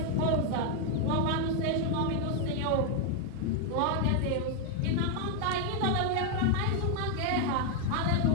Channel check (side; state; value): both; different; correlation 0.01